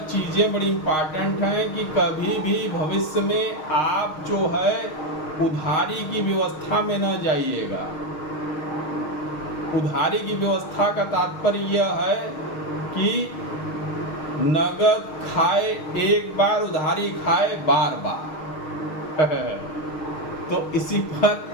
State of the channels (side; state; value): right; late; 6.4 ms